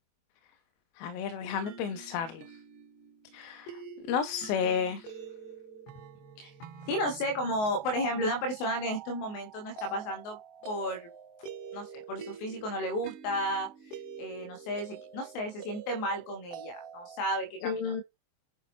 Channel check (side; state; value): right; late; 24 ms